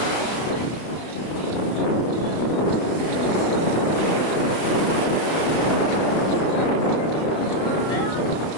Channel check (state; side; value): late; right; 32 ms